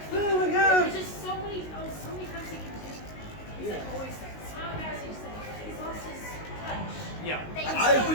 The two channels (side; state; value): right; late; 19 ms